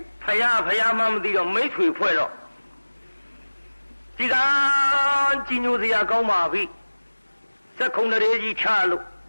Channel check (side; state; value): both; inverted; correlation -1.00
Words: ဖယားမှမသိတော့မိတ်ဆွေဖွဲ့တော့ဒီကကြီးညိုစရာကောင်းပါပြီစက်ခုံတရေကြီးချလို့